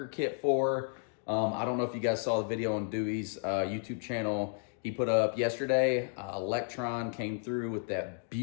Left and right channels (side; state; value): right; silent; 56 dB below the other